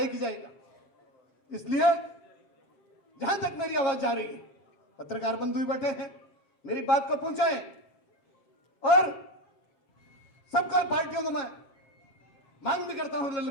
ही जाएगा। इसलिए जहां तक मेरी आवाज जा रही है, पत्रकार बंधु भी बैठे हैं, मेरी बात को पहुंचाएं और सबका पार्टियों को मैं मांग भी करता हूं,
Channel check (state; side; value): late; right; 7.5 ms